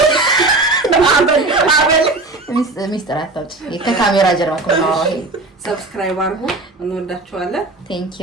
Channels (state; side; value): quieter; left; 3.1 dB